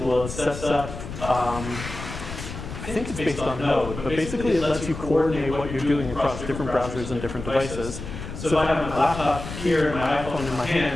It sets up, I think it's based on Node, but basically it lets you coordinate what you're doing across different browsers and different devices. So if I have my laptop here and my iPhone in my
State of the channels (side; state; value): left; noise; rumble, 9 dB below the sound